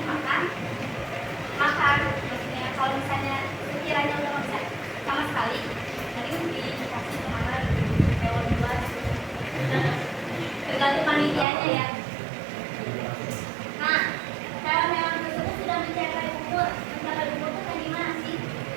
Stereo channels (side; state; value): left; drops out; at 11.5 s